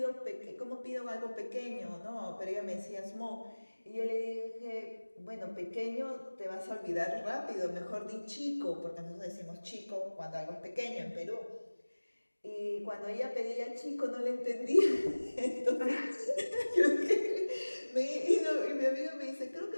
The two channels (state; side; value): inverted; both; correlation -1.00